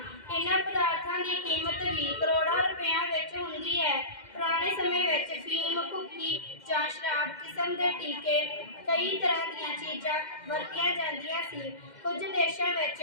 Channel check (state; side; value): late; right; 2.1 ms